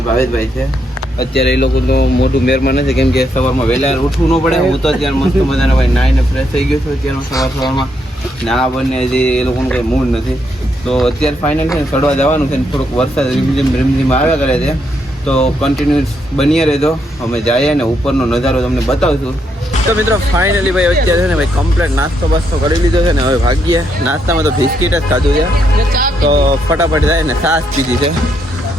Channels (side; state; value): both; normal; correlation 0.77